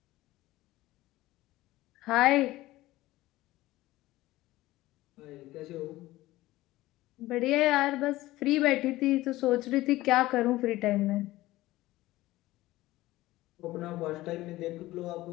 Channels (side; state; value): right; quieter; 17.4 dB